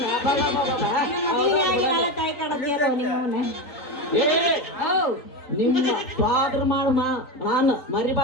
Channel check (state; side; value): late; right; 3.9 ms